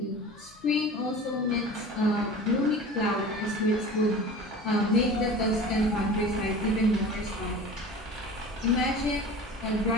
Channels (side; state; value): both; normal; correlation 0.37